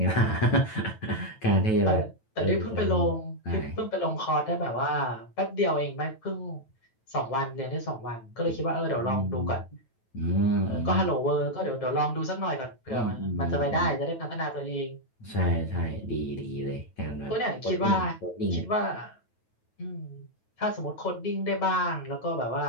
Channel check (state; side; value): late; right; 9.1 ms